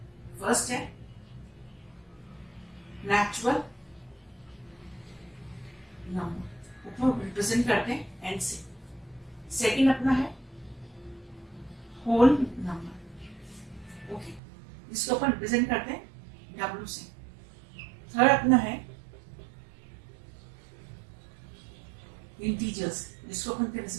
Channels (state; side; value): drops out; left; at 14.4 s